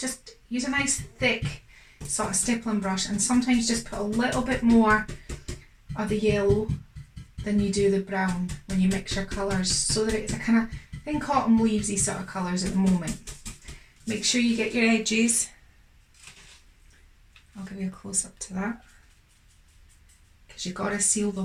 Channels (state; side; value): identical; both; correlation 1.00